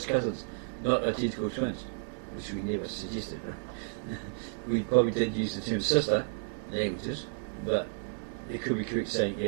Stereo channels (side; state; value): left; silent; 57 dB below the other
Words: cousins, not identical twins, which we never suggested. Right? We probably did use the term sister languages, but it could be correct saying,